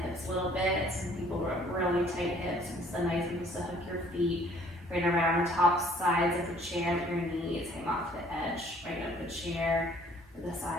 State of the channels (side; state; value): both; normal; correlation 0.58